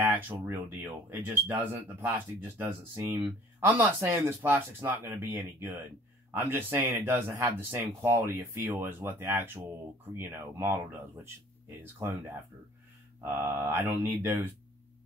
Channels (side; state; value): both; normal; correlation 0.53